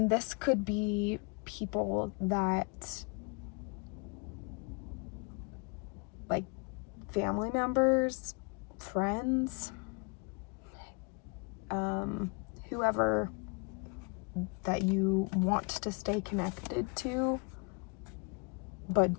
this could be people that, like, family members, friends, whoever that you want to stay connected to, but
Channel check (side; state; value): right; quieter; 31.8 dB